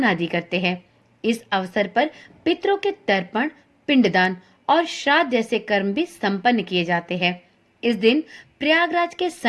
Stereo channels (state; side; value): identical; both; correlation 1.00